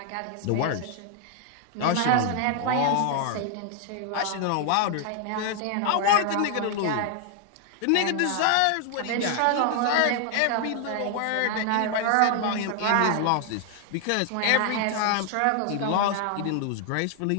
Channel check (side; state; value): both; different; correlation 0.00